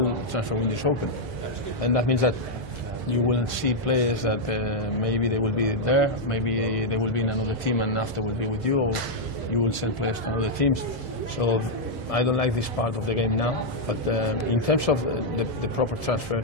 the transfer window is open. And that means that you will see players that maybe they will be there, maybe they will be in another team and after will be with you, or you will send players to other teams. So I don't like this part of the game now. But in terms of the proper transfer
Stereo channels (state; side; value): normal; both; correlation -0.03